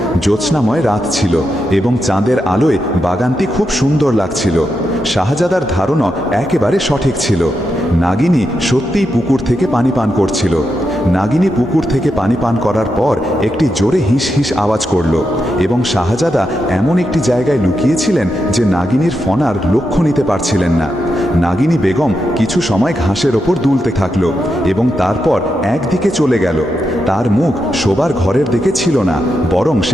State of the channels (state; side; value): normal; both; correlation 0.85